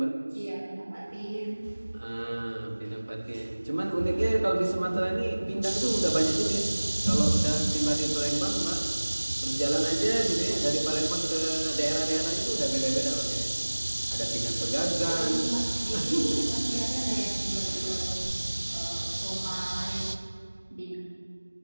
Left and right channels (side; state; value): both; inverted; correlation -1.00